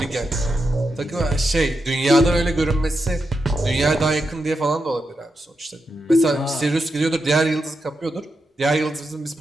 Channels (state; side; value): normal; both; correlation 0.86